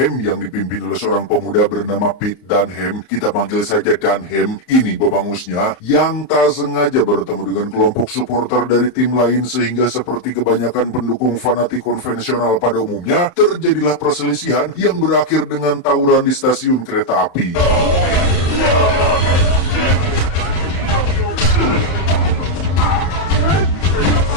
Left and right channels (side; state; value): right; late; 31 ms